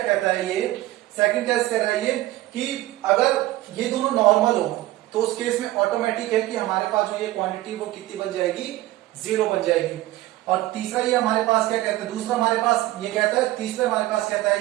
कहता है ये, सेकंड केस कह रहा है ये कि अगर ये दोनों नॉर्मल हो तो उस केस में ऑटोमेटिक है कि हमारे पास जो ये क्वांटिटी वो कितनी बन जाएगी, 0 बन जाएगी। और तीसरा ये हमारे पास क्या कहता है, दूसरा हमारे पास ये कहता है, तीसरा हमारे पास कहता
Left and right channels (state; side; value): quieter; left; 16.5 dB